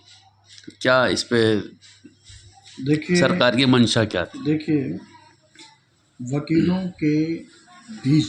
क्या इस पे देखिए सरकार की मंशा क्या थी? देखिए वकीलों के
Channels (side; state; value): both; identical; correlation 1.00